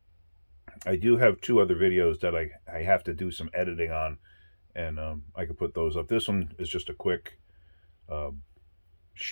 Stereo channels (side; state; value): both; inverted; correlation -1.00